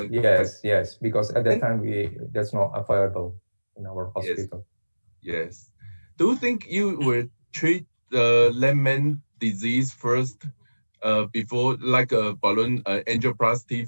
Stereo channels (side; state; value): both; inverted; correlation -1.00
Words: Because at that time that's not available in our hospital. Yes. Do you think you will treat the left main disease first before, like a balloon angioplasty